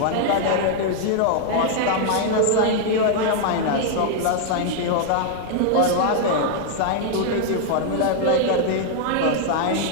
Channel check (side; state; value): both; different; correlation -0.01